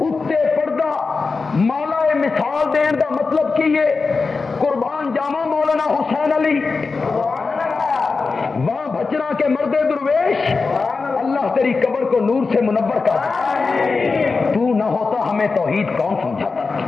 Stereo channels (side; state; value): right; quieter; 4.3 dB